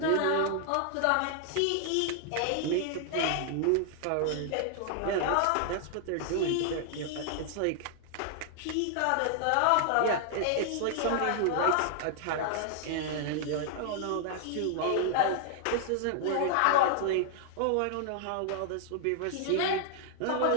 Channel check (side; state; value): both; different; correlation 0.00